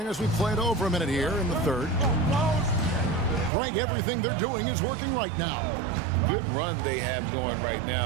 us, we've played over a minute here in the third. Greg, everything they're doing is working right now. Good run they have going right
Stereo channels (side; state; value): left; drops out; at 3.5 s